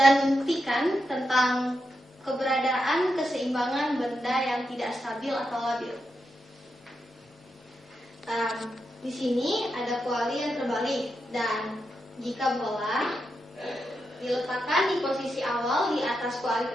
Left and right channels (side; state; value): both; normal; correlation 0.86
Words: membuktikan tentang keberadaan keseimbangan benda yang tidak stabil atau labil. Di sini ada kuali yang terbalik, dan jika bola diletakkan di posisi awal di atas kuali